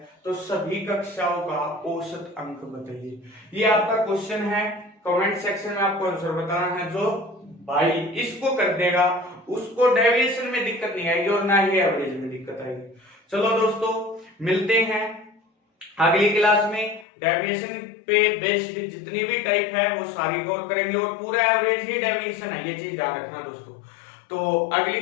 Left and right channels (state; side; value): drops out; right; at 17.1 s